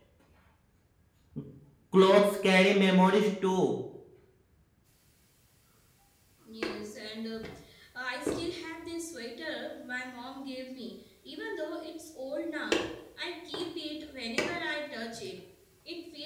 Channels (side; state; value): both; identical; correlation 1.00